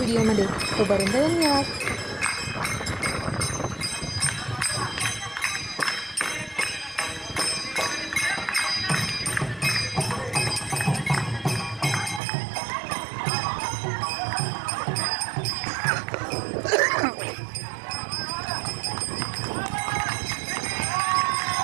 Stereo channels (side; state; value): left; drops out; at 12.2 s